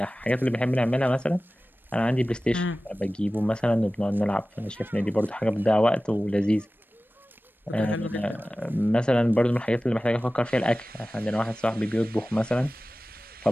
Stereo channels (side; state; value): both; normal; correlation 0.96